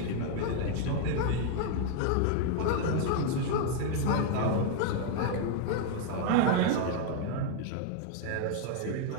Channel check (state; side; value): different; both; correlation 0.00